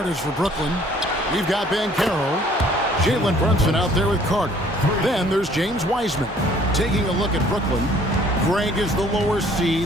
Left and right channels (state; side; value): normal; both; correlation 0.58